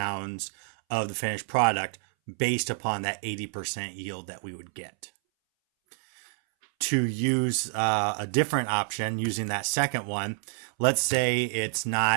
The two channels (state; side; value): silent; left; 59 dB below the other